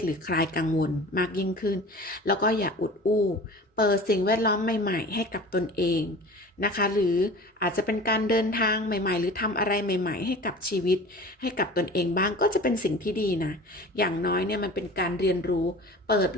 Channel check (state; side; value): normal; both; correlation 0.40